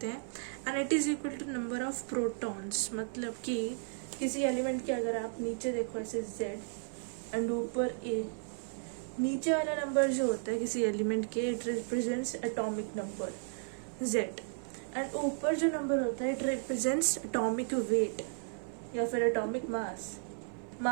हैं and it is equal to number of protons. मतलब कि किसी एलिमेंट के अगर आप नीचे देखो ऐसे Z एंड ऊपर A, नीचे वाला नंबर जो होता है किसी एलिमेंट के it represents atomic number Z and ऊपर जो नंबर होता है इट रिप्रेजेंट्स एटॉमिक वेट या फिर एटॉमिक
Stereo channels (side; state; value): left; silent; 55 dB below the other